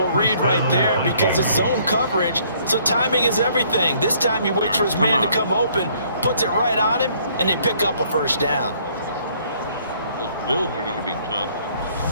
read right there, because it's zone coverage, so timing is everything. This time you wait for his man to come open, puts it right on him, and they pick up a first down. Those Bills are going to be tough.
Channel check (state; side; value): inverted; both; correlation -0.63